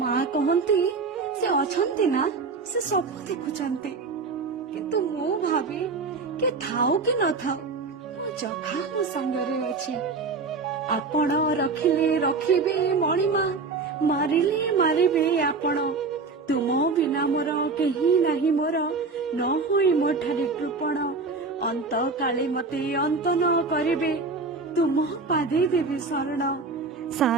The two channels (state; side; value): quieter; left; 4.2 dB